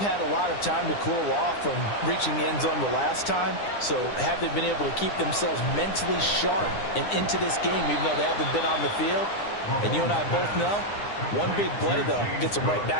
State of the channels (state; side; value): late; right; 9.8 ms